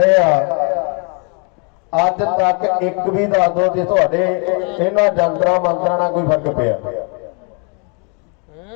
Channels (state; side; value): quieter; right; 36.2 dB